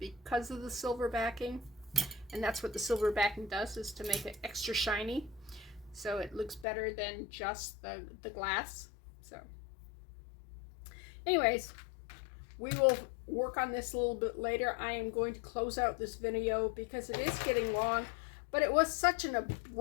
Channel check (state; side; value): drops out; right; at 6.7 s